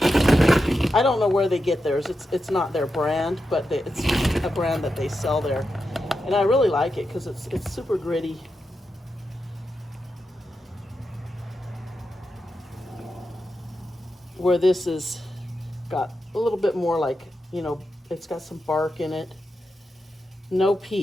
don't know where they get theirs. It's not their brand, but it's a brand that they sell there. And I really like it because it's super gritty. Where this is got a little bit more like, you know, it's got some bark in it. No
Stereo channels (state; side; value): normal; both; correlation 0.88